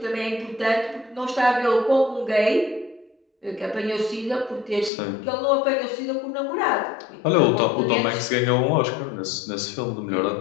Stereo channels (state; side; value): drops out; right; at 4.9 s